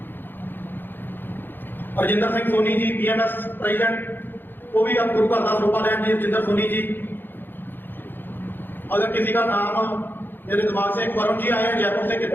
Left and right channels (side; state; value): right; late; 0.096 ms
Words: रजिंदर सिंह सोनी जी PMS प्रेजिडेंट, वो भी अब गुरु घर का सरोपा लैन जी। रजिंदर सोनी जी। अगर किसी का नाम मेरे दिमाग से, एक वरुण जी आए हैं जयपुर से,